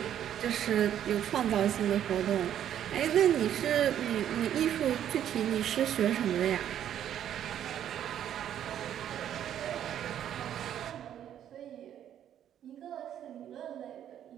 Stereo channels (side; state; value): left; quieter; 10.4 dB